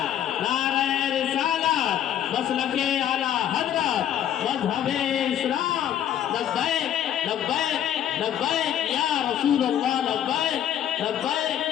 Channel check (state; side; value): quieter; right; 10.5 dB